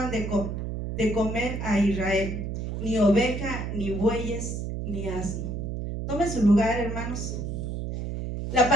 de comer a Israel, ni oveja, ni bueyes, ni asno. Tome su lugar, hermanos. La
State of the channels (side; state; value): right; noise; hum, 4 dB below the sound